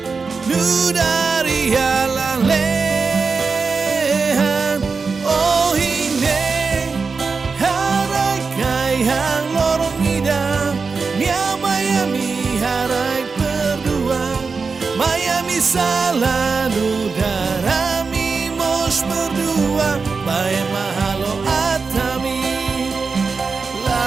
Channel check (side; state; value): left; quieter; 4.7 dB